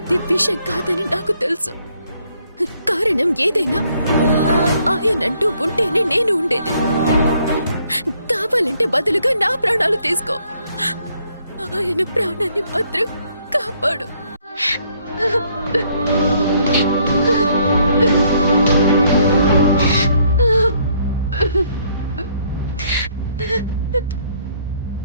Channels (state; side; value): inverted; both; correlation -0.67